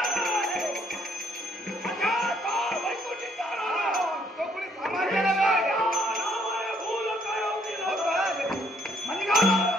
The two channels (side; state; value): both; normal; correlation 0.67